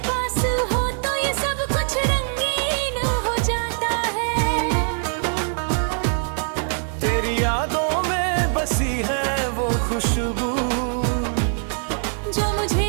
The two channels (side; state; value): left; silent; 64 dB below the other